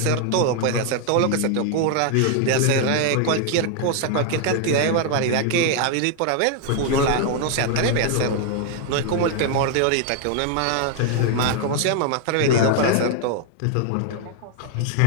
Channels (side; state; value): both; different; correlation 0.00